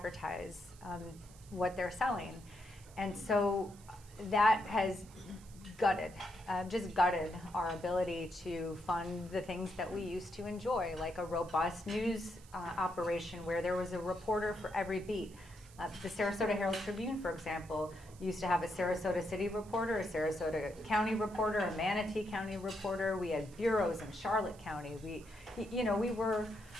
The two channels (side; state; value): right; noise; hiss, 23 dB below the sound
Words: what they're selling. And so that has gutted our ability to fund the things that we used to enjoy, like a robust news operation where there was a reporter for every beat. The Sarasota Herald Tribune, for example, used to have a Sarasota City reporter, a Sarasota County reporter, a Manatee County reporter. We had bureaus in Charlotte County.